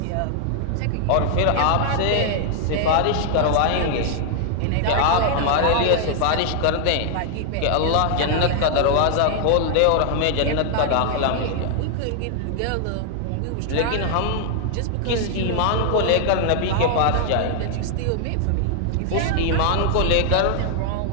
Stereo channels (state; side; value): different; both; correlation 0.00